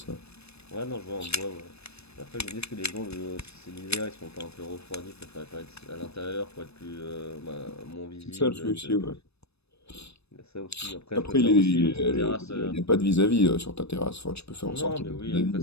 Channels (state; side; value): late; right; 0.79 ms